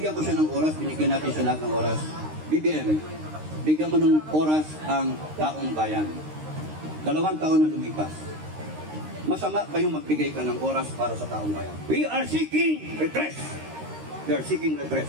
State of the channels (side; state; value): left; late; 13 ms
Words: ko siya ng oras, binigyan natin siya lahat ng oras. BBM, bigyan mo ng oras ang taong bayan. 2 taon na lumipas. Masama ba yung magbigay ka ng oras para sa taong bayan? We are seeking redress. We are seeking